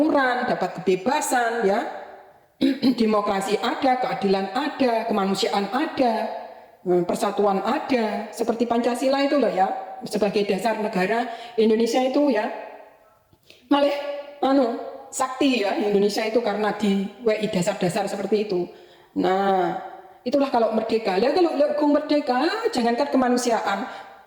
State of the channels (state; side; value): identical; both; correlation 1.00